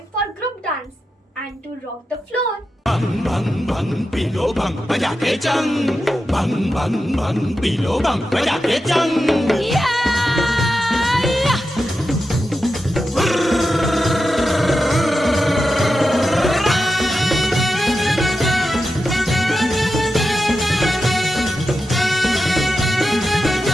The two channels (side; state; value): both; normal; correlation 0.90